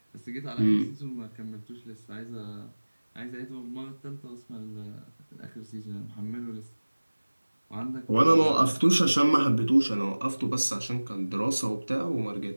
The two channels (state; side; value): inverted; both; correlation -1.00